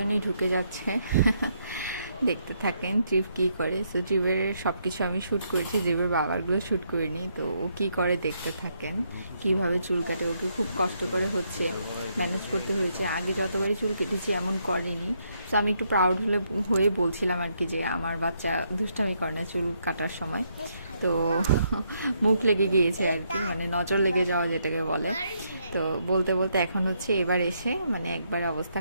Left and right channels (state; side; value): inverted; both; correlation -0.75